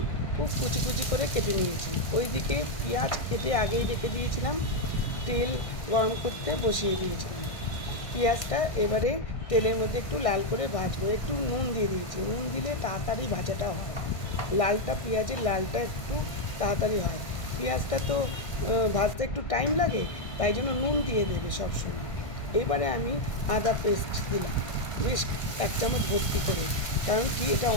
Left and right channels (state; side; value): late; right; 1.5 ms